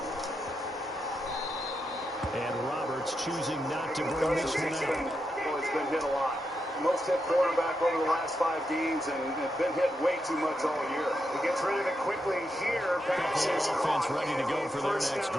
And Roberts choosing not to bring Cousins this one out. has been hit a lot. Most hit quarterback over the last 5 games and been hit way too much all year. He gets rid of it quickly here. Pass is Offense caught. ready to go for their First next down.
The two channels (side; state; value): both; normal; correlation 0.85